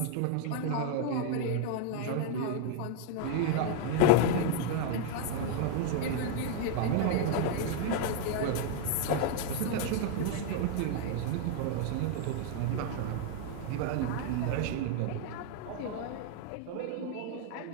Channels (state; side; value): different; both; correlation 0.00